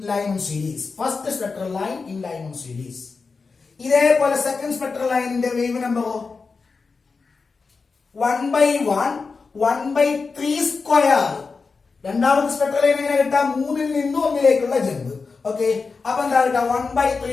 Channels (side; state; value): right; quieter; 4.6 dB